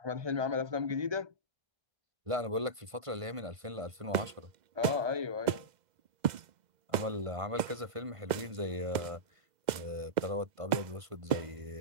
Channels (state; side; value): late; left; 2.0 ms